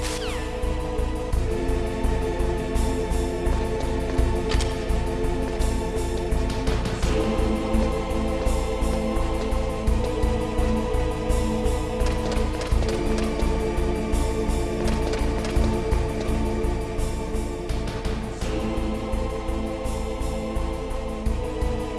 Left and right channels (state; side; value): identical; both; correlation 1.00